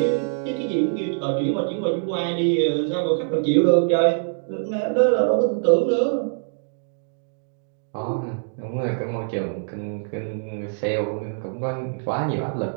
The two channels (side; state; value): left; silent; digital silence